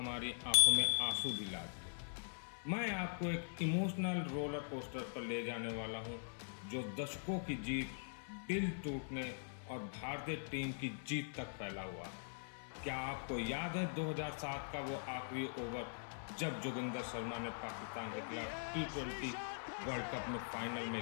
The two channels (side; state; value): right; silent; digital silence